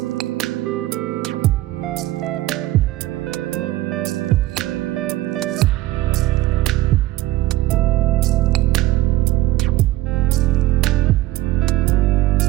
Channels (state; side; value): quieter; left; 16.1 dB